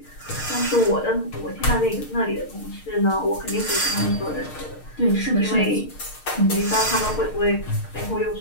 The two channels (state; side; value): late; right; 6.5 ms